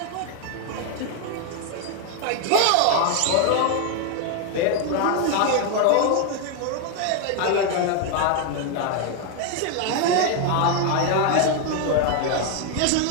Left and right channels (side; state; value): both; different; correlation 0.01